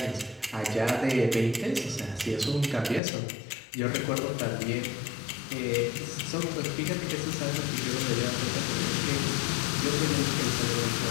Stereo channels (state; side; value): drops out; right; at 3.0 s